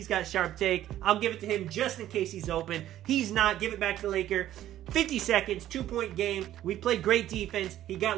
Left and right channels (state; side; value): quieter; left; 12.7 dB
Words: got sharp take. I'll give it to him just in case he's open. He's not. Give it back to Laker. 50 seconds, 2-point game. We played great defense. He got